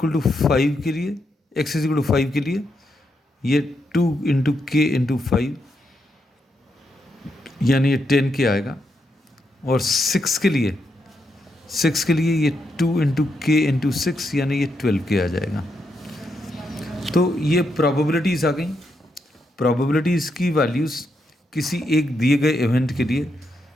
टू 5 के लिए, x इक्वल टू 5 के लिए ये 2 इंटू के इंटू 5 यानी ये 10k आएगा, और 6 के लिए ये 2 इंटू के इंटू 6 यानी ये 12k आ जाएगा। तो ये प्रोबेबिलिटीज़ आ गई। प्रोबेबिलिटीज़ की वैल्यूज़ किसी एक दिए गए इवेंट के लिए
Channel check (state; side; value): normal; both; correlation 0.81